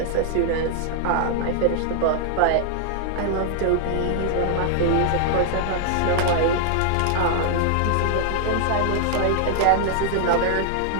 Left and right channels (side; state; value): both; different; correlation 0.00